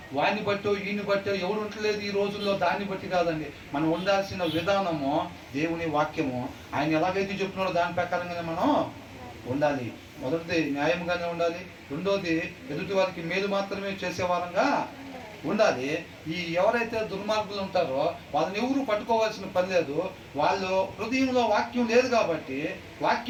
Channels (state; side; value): identical; both; correlation 1.00